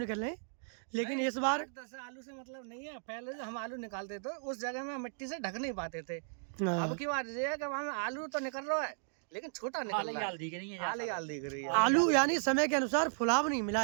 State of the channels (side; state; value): left; silent; digital silence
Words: रहे हैं, लेकिन इस बार 10 आलू से मतलब नहीं है। पहले जो हम आलू निकालते थे उस जगह में मिट्टी से ढक नहीं पाते थे। हाँ। अब की बात ये है कि वहाँ में आलू तो निकल रहा है, लेकिन छोटा निकल रहा है, दिख रही है आले आल दिख रही है। आलू यानी समय के अनुसार फुलाव नहीं मिला